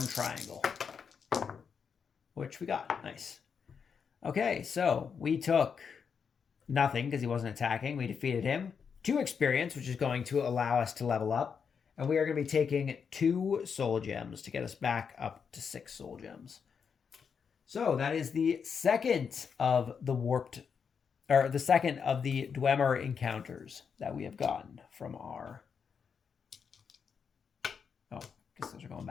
triangle, which we got. Nice. Okay, so we took nothing because he wasn't attacking. We defeated him. 2 experience, which is going to allow us to level up. And we are going to be taking 2 soul gems to get us back up to 6 soul gems. So that is the second of the the second of the Dwemer encounters that we have gotten from our... Oh, I guess those are going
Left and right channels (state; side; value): quieter; right; 6.4 dB